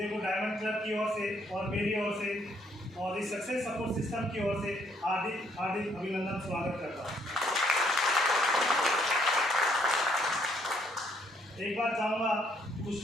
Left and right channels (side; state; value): both; normal; correlation 0.68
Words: डायमंड क्लब की ओर से और मेरी ओर से और इस सक्सेस सपोर्ट सिस्टम की ओर से हार्दिक अभिनंदन स्वागत करता हूँ। एक बार चाहूँगा